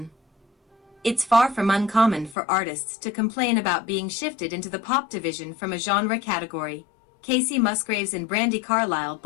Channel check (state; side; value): drops out; right; at 2.4 s